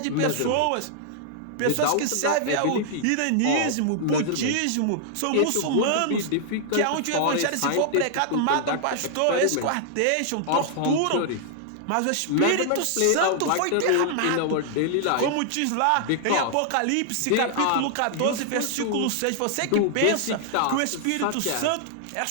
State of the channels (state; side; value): different; both; correlation -0.01